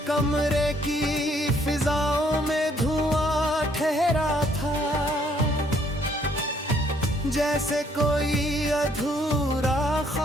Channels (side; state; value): both; normal; correlation 0.66